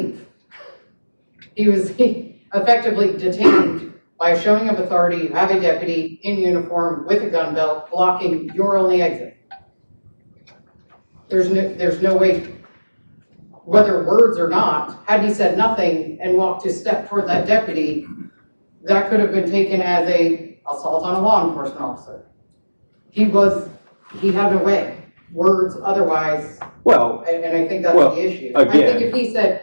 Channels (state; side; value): inverted; both; correlation -1.00